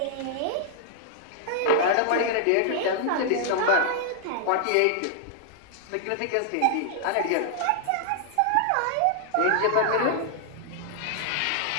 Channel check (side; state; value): both; different; correlation -0.01